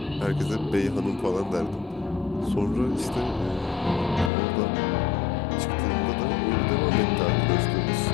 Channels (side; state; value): right; drops out; at 4.3 s